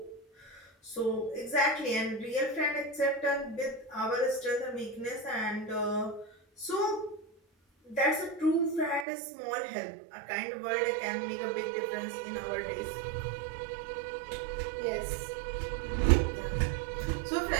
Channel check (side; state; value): left; drops out; at 9.1 s